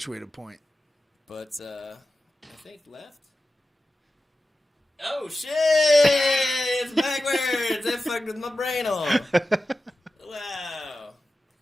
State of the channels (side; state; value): both; normal; correlation 0.93